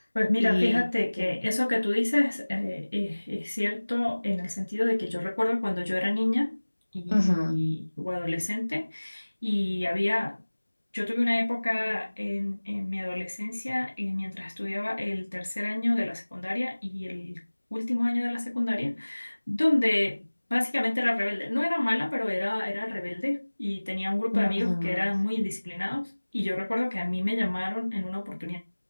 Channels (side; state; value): both; inverted; correlation -1.00